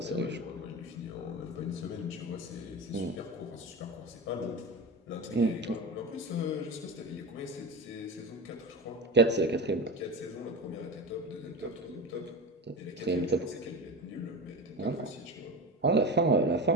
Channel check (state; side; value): normal; both; correlation 0.26